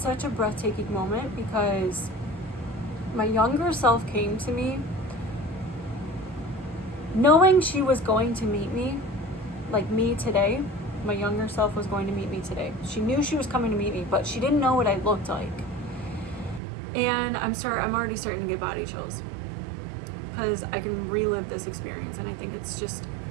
a breathtaking moment because my younger self came to me knowing she was going to meet me, like me today. My younger self was going to meet me today. She knew she was coming to meet me, but she didn't know what I looked like. And I'm already starting to get body chills because I can relive this experience, and I think it's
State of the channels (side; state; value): left; drops out; at 16.6 s